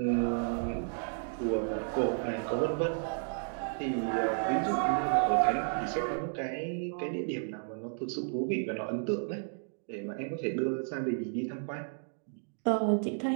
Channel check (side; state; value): left; silent; digital silence